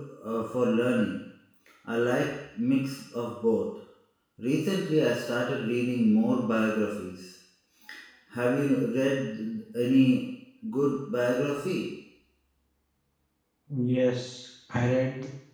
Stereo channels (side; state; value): both; identical; correlation 1.00